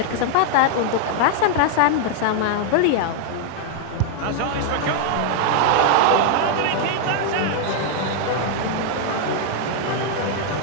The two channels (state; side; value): different; both; correlation 0.00